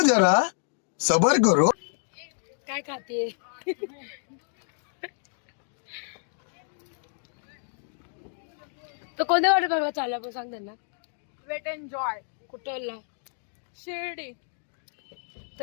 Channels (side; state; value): right; silent; 57 dB below the other